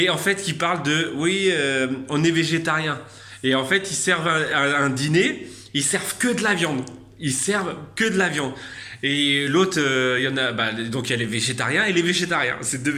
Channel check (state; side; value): identical; both; correlation 1.00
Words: en fait, qui parlent de, oui, on est végétarien. Et en fait, ils servent un dîner, ils servent que de la viande. Ils servent que de la viande. Et l'autre, il y en a, donc il y a les végétariens et les végétariens. C'est deux